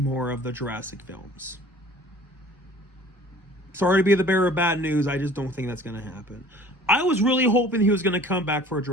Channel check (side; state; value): both; normal; correlation 0.47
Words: of the Jurassic films. Sorry to be the bearer of bad news, I just don't think that's going to happen. I was really hoping he was going to come back for a